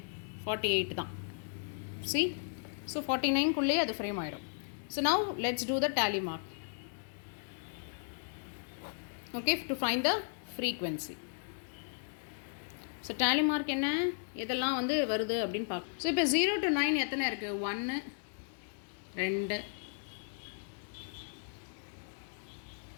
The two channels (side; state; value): right; silent; digital silence